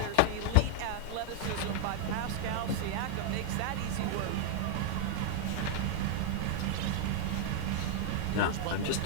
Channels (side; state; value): both; different; correlation 0.00